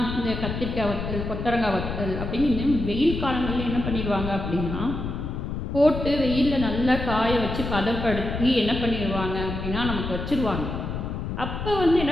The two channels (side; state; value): left; noise; rumble, 5 dB below the sound